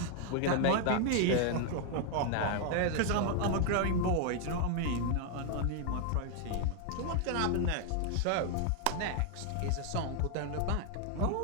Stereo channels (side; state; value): both; different; correlation 0.00